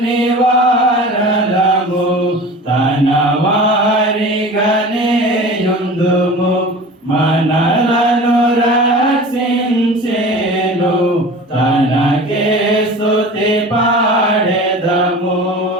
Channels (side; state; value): both; normal; correlation 0.38